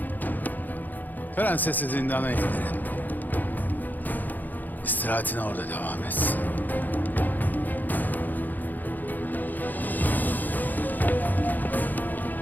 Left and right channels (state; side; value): late; right; 0.085 ms